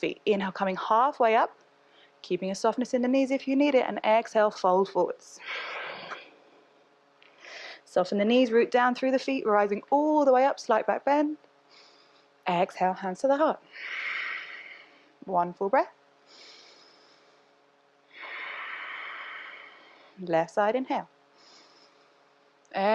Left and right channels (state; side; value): identical; both; correlation 1.00